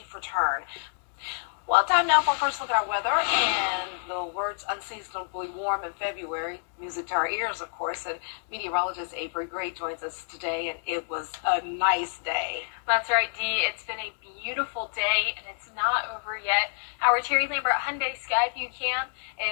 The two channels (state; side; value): silent; right; digital silence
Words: return. Well, time now for a first look at our weather, and the words unseasonably warm in February, music to our ears, of course, and meteorologist Avery Gray joins us today, and it was a nice day. That's right, Dee. It's been a beautiful day, and it's not over yet. Our Terry Lambert Hyundai Skyview Cam